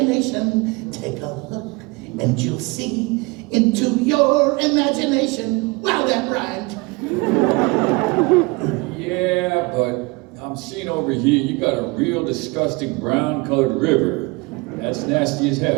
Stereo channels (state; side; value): quieter; left; 26.3 dB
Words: Take a look, and you'll see into your imagination. Wow, that rhymed. Yeah, but I'm seeing over here you got a real disgusting brown-colored river. That's nasty as